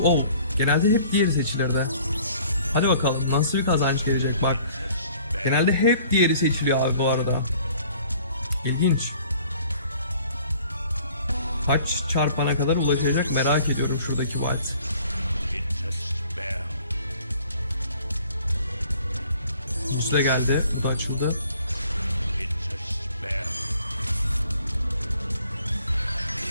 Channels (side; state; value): both; inverted; correlation -0.55